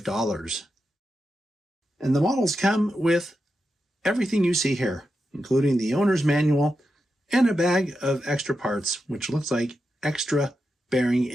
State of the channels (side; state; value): both; normal; correlation 0.88